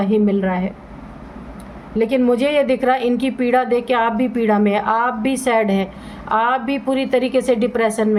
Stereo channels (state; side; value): identical; both; correlation 1.00